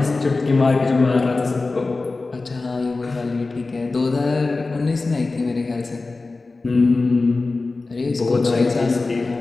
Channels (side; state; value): right; quieter; 3.6 dB